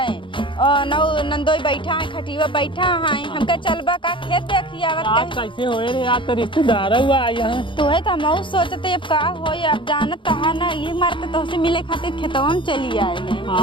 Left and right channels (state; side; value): late; right; 0.24 ms